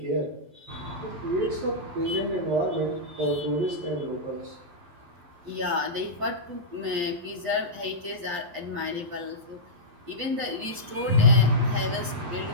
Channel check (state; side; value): late; left; 11 ms